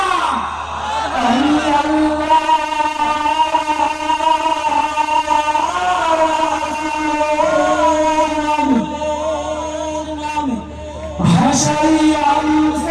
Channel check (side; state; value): both; identical; correlation 1.00